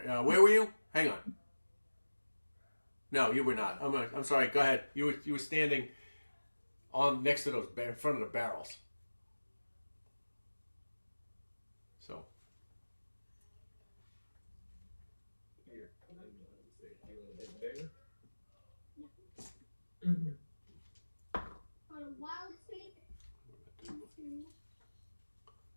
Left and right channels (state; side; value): inverted; both; correlation -1.00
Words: Where were you? Hang on. No, you were not. I'm sorry. Go ahead. You were standing on next to those in front of the barrels. So Here, and then say you want to hit there. For a wild state into